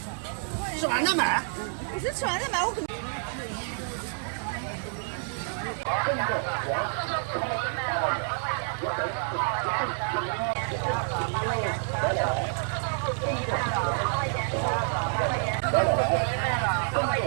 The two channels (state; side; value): silent; left; 59 dB below the other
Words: 吃完再买。不是吃完再买，我可能。